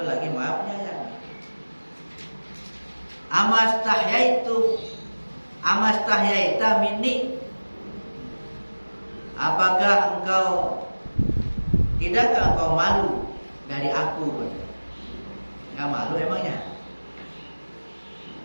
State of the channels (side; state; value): both; inverted; correlation -1.00